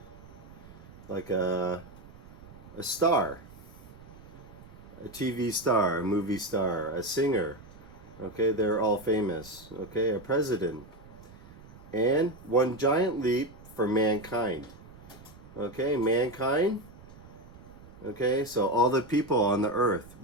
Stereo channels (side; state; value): right; noise; rumble, 19 dB below the sound